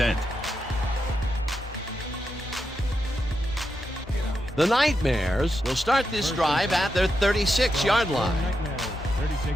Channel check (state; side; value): normal; both; correlation 0.86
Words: The Nightmares will start this drive at their 36-yard line. Nightmares,